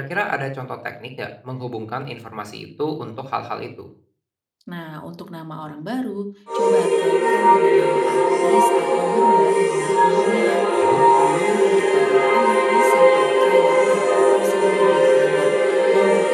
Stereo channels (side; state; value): both; identical; correlation 1.00